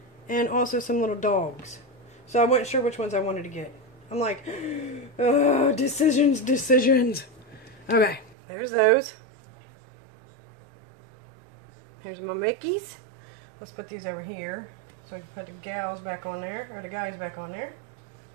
and also some little dogs. So I wasn't sure which ones I wanted to get. I'm like, oh, decisions. Okay, there's those. Here's my Mickeys. Let's put these over here. So I can put the gals back on there, or the guys back on there.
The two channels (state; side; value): drops out; left; at 8.3 s